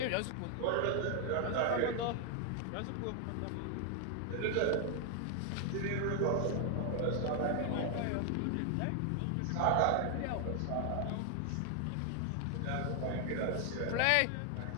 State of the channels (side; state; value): both; different; correlation 0.00